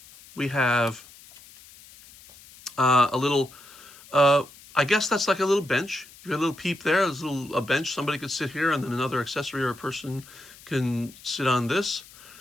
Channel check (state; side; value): noise; left; hiss, 22 dB below the sound